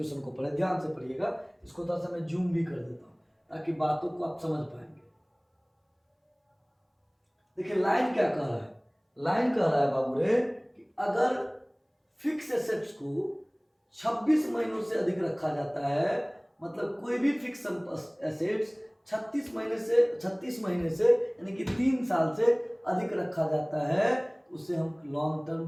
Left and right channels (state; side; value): identical; both; correlation 1.00